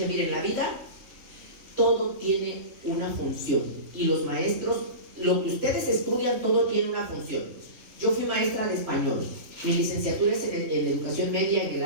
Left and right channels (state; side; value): late; left; 3.6 ms